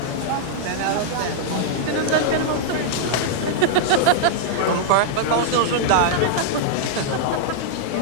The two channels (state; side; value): different; both; correlation -0.02